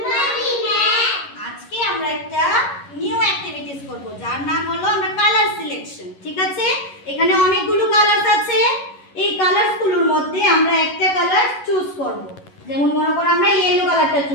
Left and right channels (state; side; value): late; right; 11 ms